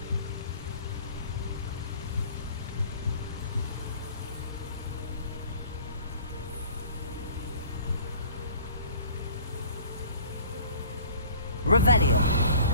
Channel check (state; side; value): inverted; both; correlation -0.48